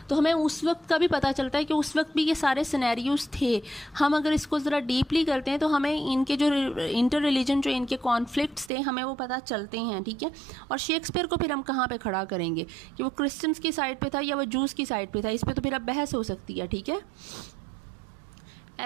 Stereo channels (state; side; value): drops out; left; at 8.7 s